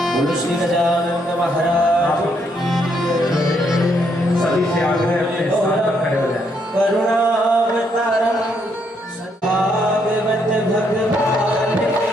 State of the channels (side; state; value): both; normal; correlation 0.74